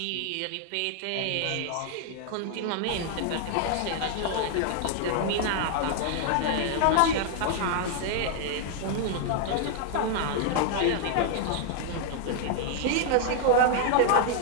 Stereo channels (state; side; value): different; both; correlation 0.00